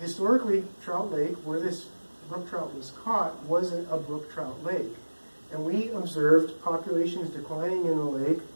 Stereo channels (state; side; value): inverted; both; correlation -1.00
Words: historically, Trout Lake, where this brook trout was caught, wasn't a brook trout lake. And we observed populations declining in the lake,